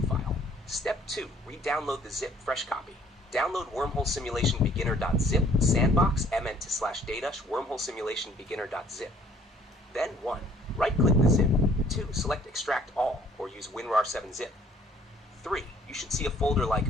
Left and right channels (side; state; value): both; normal; correlation 0.59